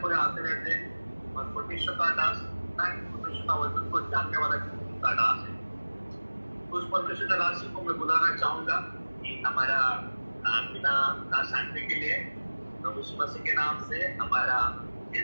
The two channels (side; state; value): both; inverted; correlation -1.00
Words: कोई आते रहते हैं। और परमेश्वर का दास परमेश्वर का वचन को जानने वाला का दास है। उस परमेश्वर का दास को मैं बुलाना चाहूंगा कि हमारा बिना ना शांति के लिए प्रभु यीशु मसीह के नाम से हमारा